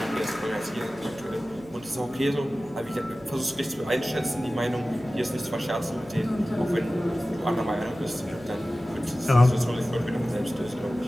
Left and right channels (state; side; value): noise; left; hum, 22 dB below the sound